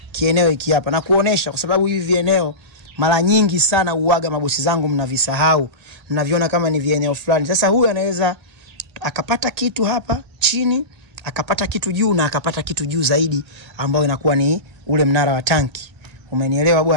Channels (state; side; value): late; left; 1.8 ms